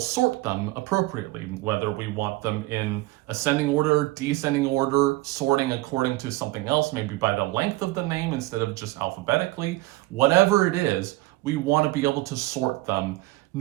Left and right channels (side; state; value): left; quieter; 19.1 dB